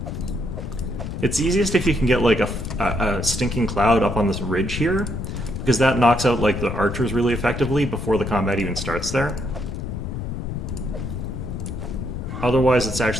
It's easiest if you can get like a stinking cloud up on this ridge here, because that knocks out like the archers really effectively before the combat even starts there. Otherwise, it's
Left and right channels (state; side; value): noise; left; rumble, 5 dB below the sound